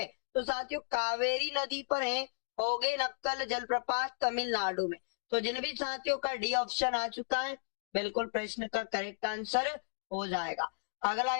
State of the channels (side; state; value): right; silent; digital silence